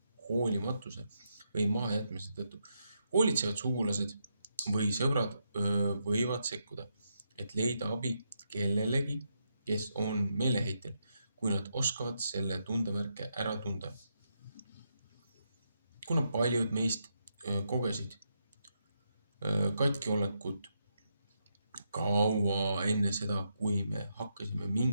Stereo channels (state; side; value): inverted; both; correlation -0.81